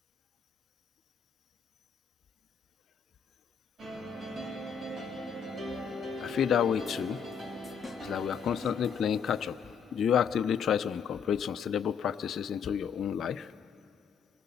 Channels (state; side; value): quieter; right; 7.1 dB